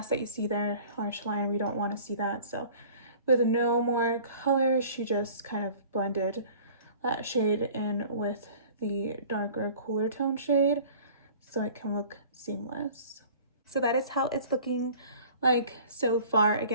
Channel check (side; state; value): both; inverted; correlation -0.47